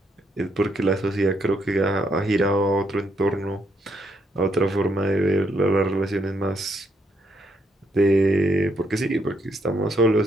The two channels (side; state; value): both; normal; correlation 0.75